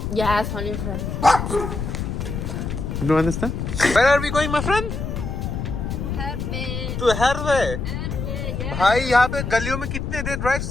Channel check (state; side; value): noise; left; rumble, 4 dB below the sound